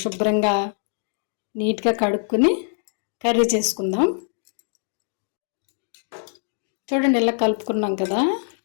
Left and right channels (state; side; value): silent; right; digital silence